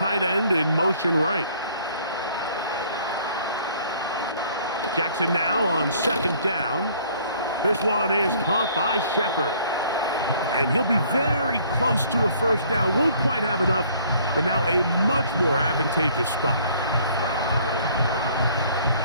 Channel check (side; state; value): both; inverted; correlation -0.58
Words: end in motion right. Jackson now on 2nd down. This one is caught by Shepard. And he'll be very close to a 1st down. Won't quite have enough, but now a much more advantageous spot.